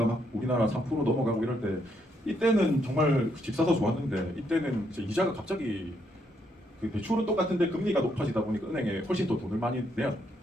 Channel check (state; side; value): normal; both; correlation 0.75